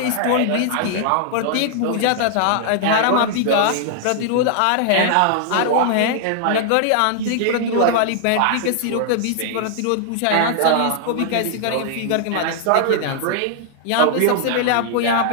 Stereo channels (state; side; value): different; both; correlation -0.01